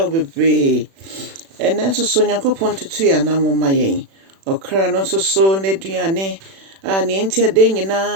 be brave. And then so Nyankopon tutu ya na moma yen. Okra no so n'aduane a ne ntia de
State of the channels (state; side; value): late; left; 36 ms